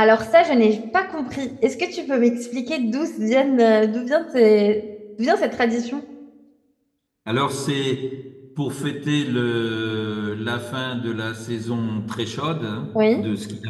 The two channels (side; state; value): both; identical; correlation 1.00